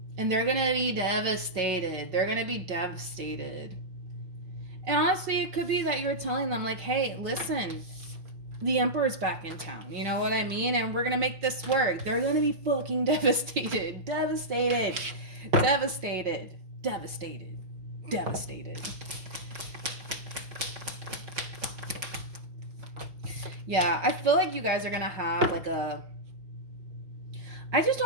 And they're going to be devastated. They're going to be devastated. And honestly, it could be that you're telling them, like, hey, listen, the Emperor's back in town. You know what I mean? And we're going to make this work. They're going to be fucking devastated. Devastated. Devastated. Devastated. Devastated. Yeah, I feel like you guys are going to have, like, I just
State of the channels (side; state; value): left; late; 5.5 ms